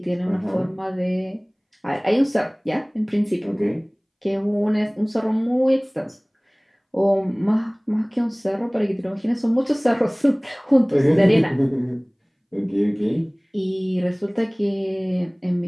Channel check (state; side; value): identical; both; correlation 1.00